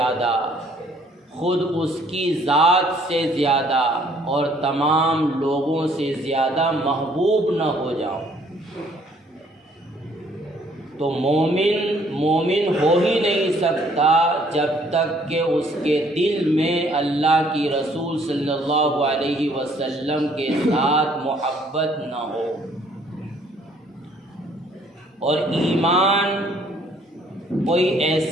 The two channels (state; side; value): normal; both; correlation 0.62